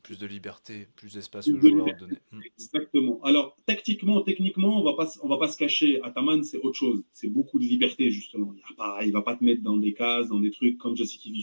Plus de liberté, plus d'espace aux joueurs donné. Exactement. Alors, tactiquement, techniquement, on va pas se cacher. Ataman, c'est autre chose. C'est beaucoup de liberté, justement. Il va pas te mettre dans des cases, dans des trucs comme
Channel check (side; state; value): both; inverted; correlation -1.00